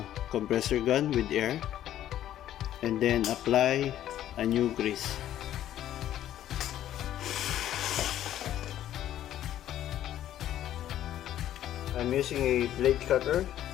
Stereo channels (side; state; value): right; quieter; 12.0 dB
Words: compressor gun with air, and then apply a new grease. I'm using a blade cutter